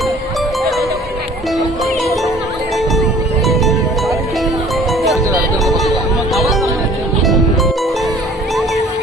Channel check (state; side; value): normal; both; correlation 0.51